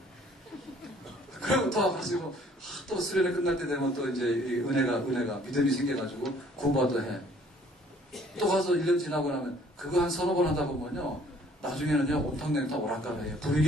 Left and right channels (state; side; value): normal; both; correlation 0.57